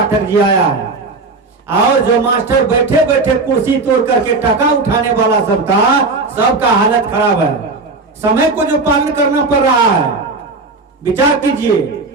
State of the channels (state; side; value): quieter; left; 3.7 dB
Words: जी आया है, और जो मास्टर बैठे बैठे कुर्सी तोड़ करके टका उठाने वाला सब था, सबका हालत खराब है। समय को जो पालन करना पड़ रहा है, विचार कीजिए।